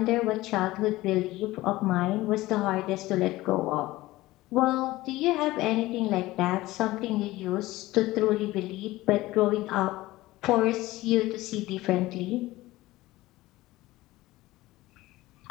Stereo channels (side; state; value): right; quieter; 18.2 dB